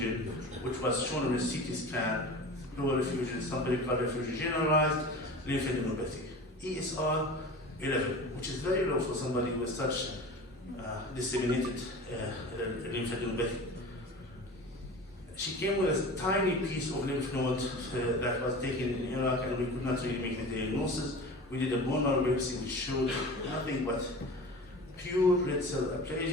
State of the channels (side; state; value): both; normal; correlation 0.35